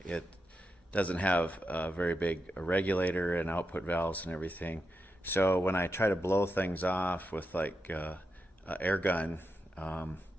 It doesn't have a very big regulator and output valves and everything. So when I try to blow things off with like an air gun,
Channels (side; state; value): both; normal; correlation 0.87